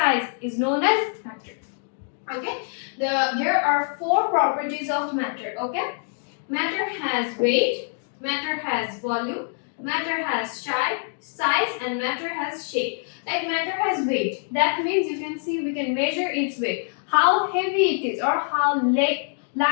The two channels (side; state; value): right; silent; 59 dB below the other